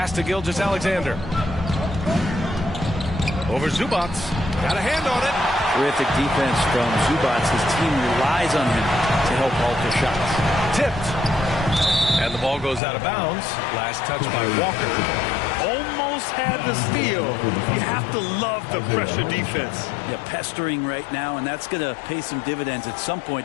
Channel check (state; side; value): drops out; right; at 12.8 s